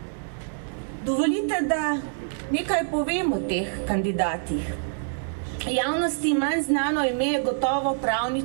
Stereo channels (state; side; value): silent; left; digital silence